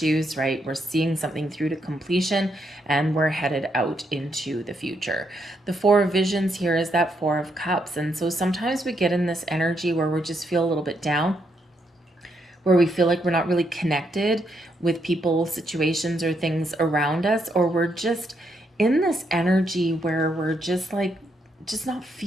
right? We're seeing something through to completion, and we're headed out into the future. The 4 of visions here is that 4 of cups. And so sometimes we get in this energy where we just feel a little bit down, where we feel like we're not really connected with people, situations, or things around us, or we're just in this energy where we're just not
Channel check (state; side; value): normal; both; correlation 0.77